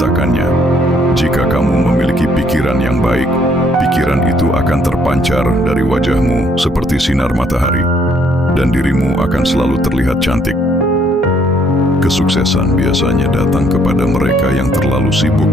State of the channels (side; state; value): both; normal; correlation 0.67